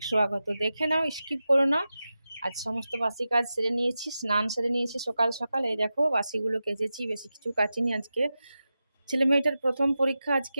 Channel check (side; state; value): both; inverted; correlation -0.92